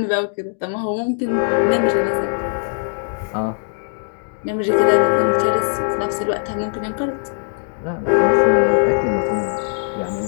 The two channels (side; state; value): right; silent; 66 dB below the other